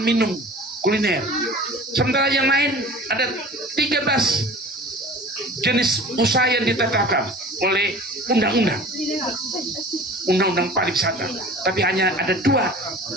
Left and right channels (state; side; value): normal; both; correlation 0.41